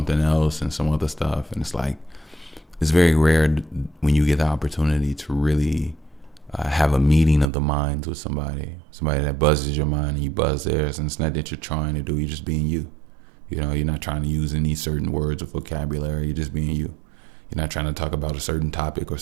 else and some other stuff. And it's like, it's very rare when you get the opportunity to really have a meeting of the minds with somebody that buzzes your mind and you buzz theirs. And it's not that you're trying to do, you're just being you. You're not trying to use any certain words or vocabulary. You're just being you. You're not trying to talk about a certain topic or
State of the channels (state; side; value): drops out; left; at 7.5 s